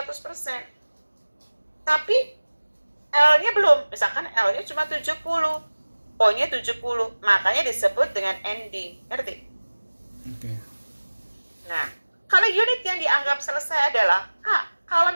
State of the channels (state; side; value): inverted; both; correlation -1.00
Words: Tapi L-nya belum. Misalkan L-nya cuma 70, O-nya 70. Makanya disebut dengan ending. Ngerti? Oke. Nah, kalau unit yang dianggap selesai adalah kalau